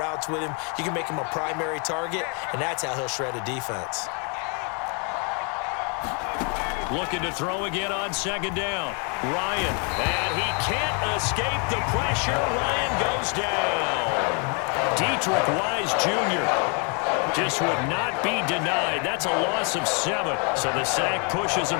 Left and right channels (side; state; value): right; quieter; 36.8 dB